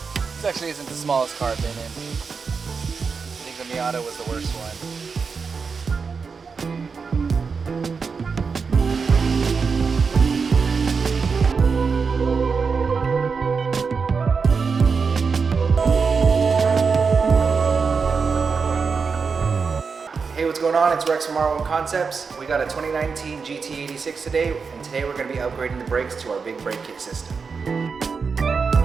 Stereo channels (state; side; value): quieter; left; 5.2 dB